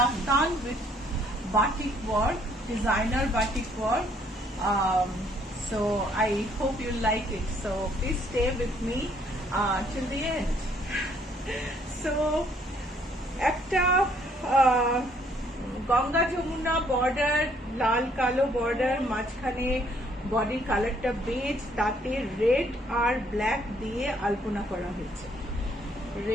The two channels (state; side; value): normal; both; correlation 0.65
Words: with batik work, designer batik work. So I hope you like it. So please stay with me till the end. So একটা Ganga Jamuna border, লাল কালো border, মাঝখানে বডির কালারটা base, তাতে red আর black দিয়ে আলপনা করা হয়েছে।